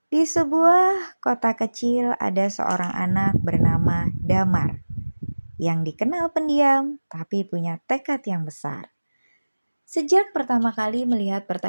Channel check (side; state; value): both; inverted; correlation -1.00